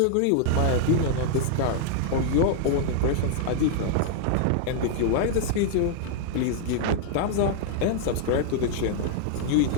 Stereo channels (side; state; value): both; different; correlation 0.00